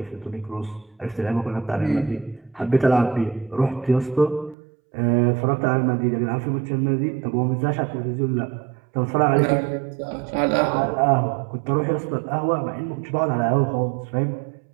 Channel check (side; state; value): left; drops out; at 4.5 s